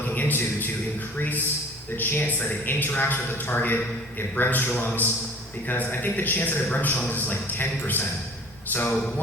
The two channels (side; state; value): both; normal; correlation 0.47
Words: into to increase the chance that it interacts with the target, it Bremsstrahlungs, because I think the chance that it Bremsstrahlungs is like 10%. So